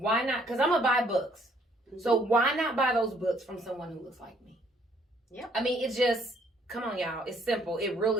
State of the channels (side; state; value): both; normal; correlation 0.65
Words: not? Because I'm going to buy books. So why not buy those books from someone who looks like me? Yep. I mean, it's just, come on, y'all. It's simple. It